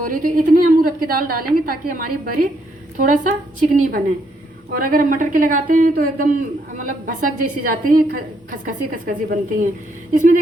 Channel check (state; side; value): normal; both; correlation 0.74